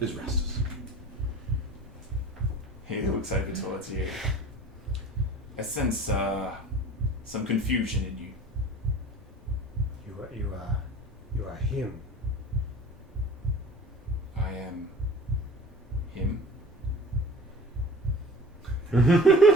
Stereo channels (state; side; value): normal; both; correlation 0.42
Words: is Rastus. He looks over towards you. I sense some confusion in you. You are him. I am him.